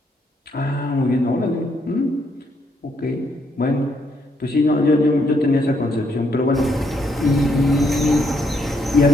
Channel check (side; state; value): both; normal; correlation 0.74